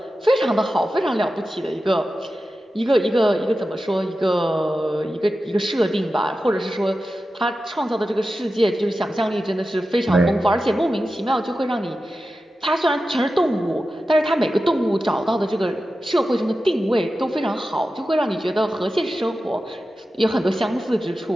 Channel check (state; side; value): normal; both; correlation 0.93